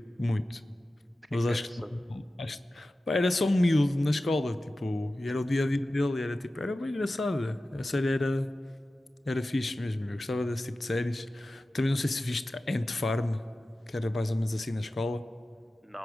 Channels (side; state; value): both; normal; correlation 0.95